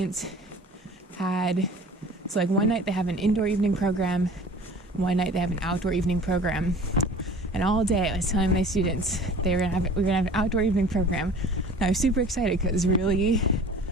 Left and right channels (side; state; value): both; normal; correlation 0.44